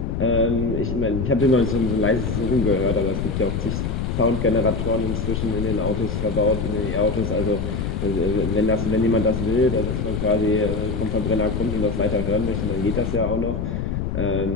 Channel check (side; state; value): left; noise; rumble, 2 dB below the sound